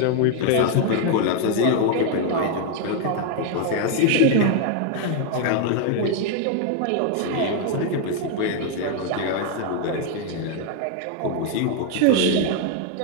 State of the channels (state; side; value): different; both; correlation 0.01